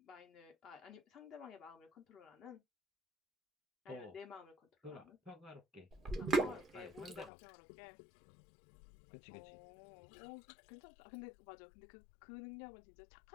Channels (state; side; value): drops out; right; at 7.3 s